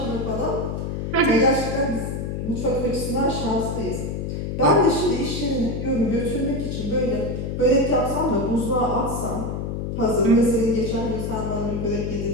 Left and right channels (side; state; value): left; noise; hum, 3 dB below the sound